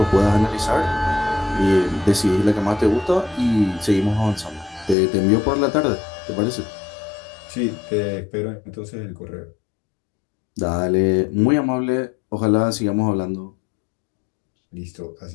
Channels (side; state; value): right; drops out; at 5.0 s